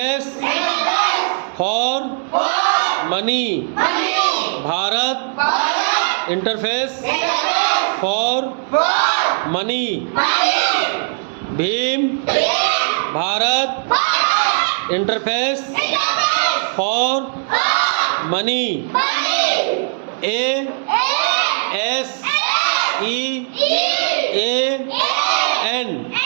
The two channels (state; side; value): silent; left; digital silence